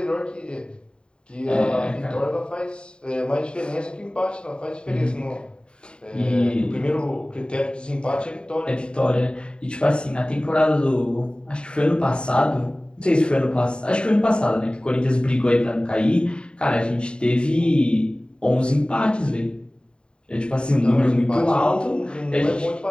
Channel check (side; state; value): right; late; 0.051 ms